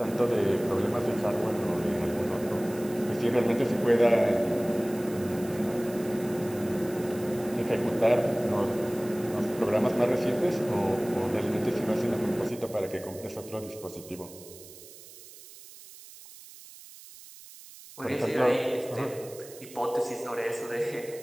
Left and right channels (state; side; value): noise; right; hiss, 18 dB below the sound